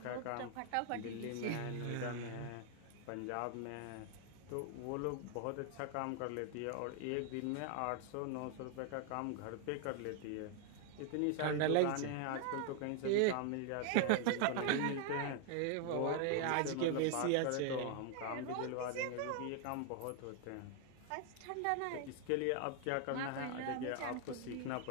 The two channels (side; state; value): both; different; correlation 0.00